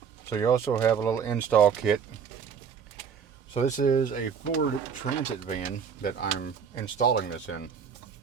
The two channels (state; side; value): quieter; left; 6.8 dB